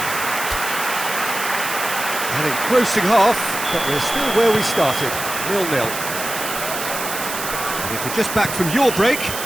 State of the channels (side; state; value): right; noise; hiss, 6 dB below the sound